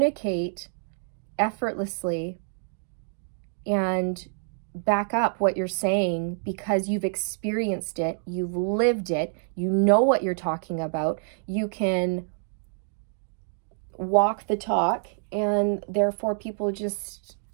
effortlessly and back up what you're saying because you've experienced it, you've lived it, you know what you're talking about, you can walk the talk, and therefore people just,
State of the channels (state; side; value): silent; left; 60 dB below the other